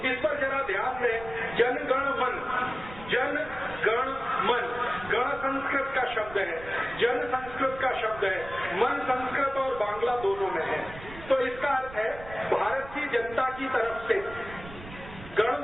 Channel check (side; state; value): right; noise; rumble, 15 dB below the sound